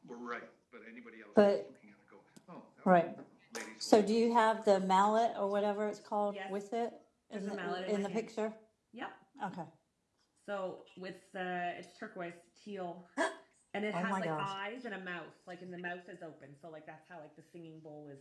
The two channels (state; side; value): identical; both; correlation 1.00